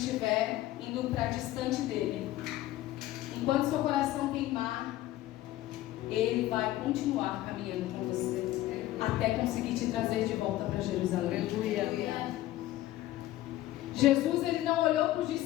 indo para distante dele, enquanto seu coração queimar, ele vai continuar caminhando com você até conseguir te trazer de volta para Jerusalém. Aleluia. Jesus, ele não olhou para os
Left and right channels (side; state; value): right; quieter; 15.3 dB